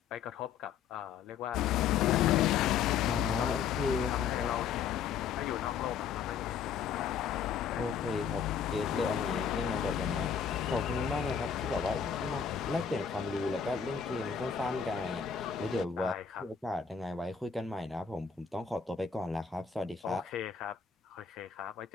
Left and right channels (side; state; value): right; quieter; 7.1 dB